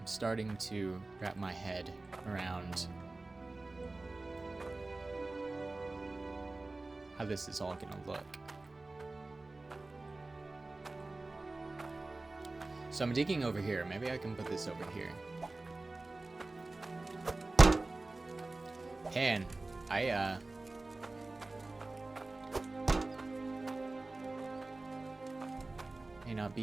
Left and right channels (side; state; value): left; quieter; 3.2 dB